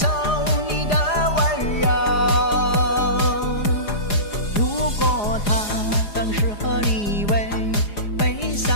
你的温柔。如果他更适合你为悲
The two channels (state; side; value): late; right; 4.9 ms